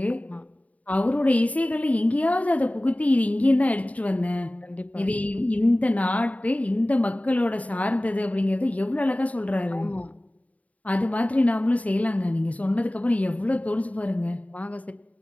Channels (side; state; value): right; late; 0.069 ms